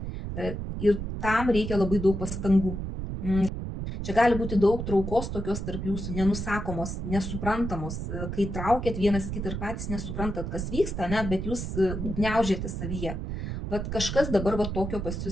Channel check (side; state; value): right; noise; rumble, 5 dB below the sound